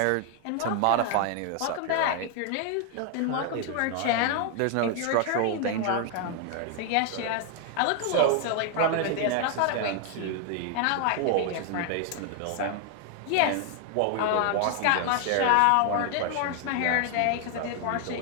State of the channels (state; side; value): different; both; correlation 0.00